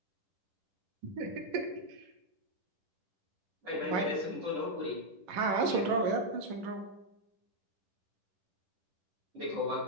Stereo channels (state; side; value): late; left; 10 ms